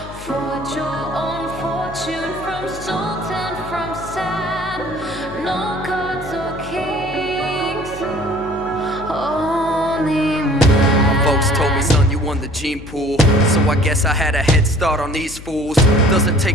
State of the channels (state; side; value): noise; left; hum, 15 dB below the sound